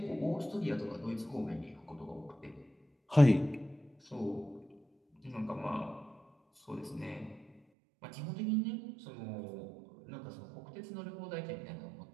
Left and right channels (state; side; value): drops out; left; at 7.6 s